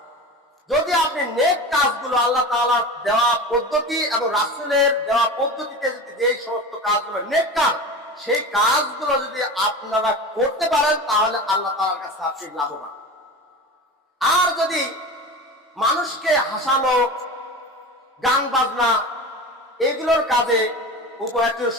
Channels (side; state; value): both; normal; correlation 0.30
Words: যদি আপনি নেক কাজগুলো আল্লাহ তাআলার দেওয়া পদ্ধতি এবং রাসূলের দেওয়া পদ্ধতিতে যদি যে সমস্ত কাজগুলো নেককার, সেই কাজগুলো যদি আপনারা করতে পারেন, তাহলে আল্লাহ তাআলার কাছে আপনি লাভবান। আর যদি মানুষকে হাসানো, গান বাজনা এগুলোর কাজে একটু